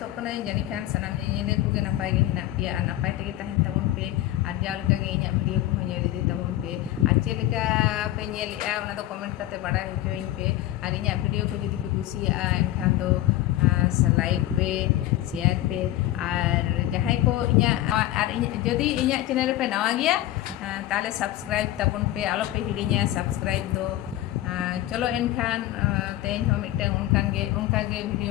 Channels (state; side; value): quieter; right; 14.6 dB